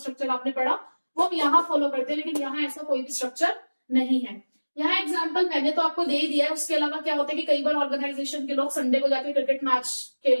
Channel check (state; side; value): inverted; both; correlation -1.00